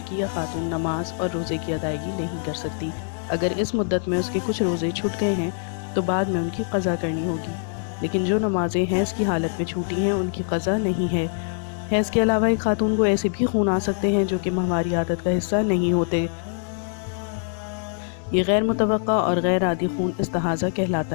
یا خاتون نماز اور روزے کی ادائیگی نہیں کر سکتی۔ اگر اس مدت میں اس کے کچھ روزے چھوٹ گئے ہیں تو بعد میں ان کی قضا کرنی ہوگی، لیکن جو نمازیں حیض کی حالت میں چھوٹی ہیں ان کی قضا نہیں ہے۔ حیض کے علاوہ ایک خاتون کو ایسے بھی خون آ سکتے ہیں جو کہ ماہواری عادت کا حصہ نہیں ہوتے۔ یہ غیر متوقع اور غیر عادی خون استحاضہ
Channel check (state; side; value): silent; right; 63 dB below the other